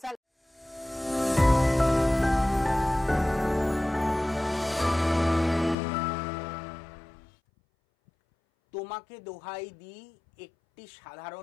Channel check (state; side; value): drops out; right; at 5.8 s